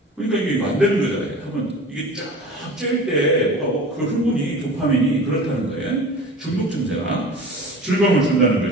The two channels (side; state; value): both; normal; correlation 0.38